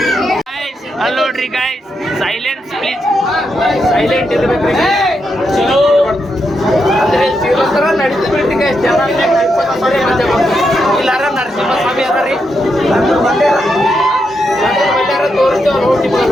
ಅಲ್ಲಿ ನೋಡ್ರಿ ಗೈಸ್, ಸೈಲೆನ್ಸ್ ಪ್ಲೀಸ್, ಸೈಲೆಂಟ್ ಇರ್ಬೇಕ್ರಿ ಚಲೋ ಅಂದ್ರೆ ಶ್ರೀಲಂತರ ನಡೀತು ಬಿಡ್ರಿ ಗೈಸ್. ಜನ ಇಲ್ಲಾರ ನರಸಿಂಹ ಸ್ವಾಮಿ ಅದ ರೀ ತೋರಿಸ್ತೇವೆ ನೋಡಿ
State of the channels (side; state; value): both; normal; correlation 0.83